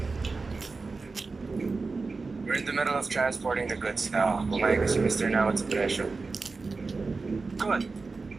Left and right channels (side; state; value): left; quieter; 4.0 dB